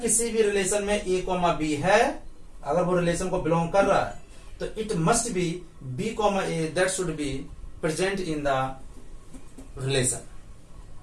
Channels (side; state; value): both; identical; correlation 1.00